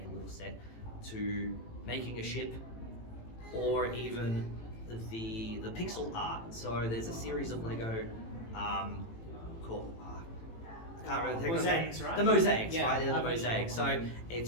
a little set, to making a ship, or even the pixel art. So there's a series of Lego called I can't remember the Mosaics, right? The mosaics, Yeah, right? They're the I've been mosaics. sure. So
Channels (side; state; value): right; late; 18 ms